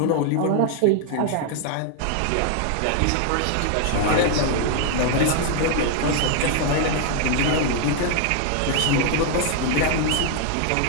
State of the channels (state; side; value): different; both; correlation 0.00